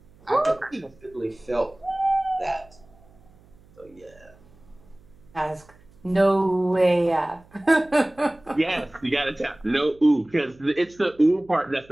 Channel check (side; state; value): right; noise; hum, 28 dB below the sound